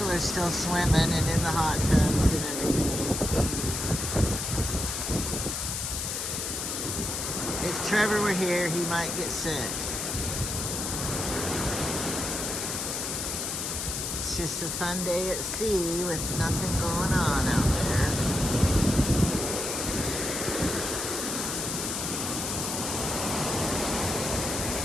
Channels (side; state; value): left; noise; hiss, 3 dB below the sound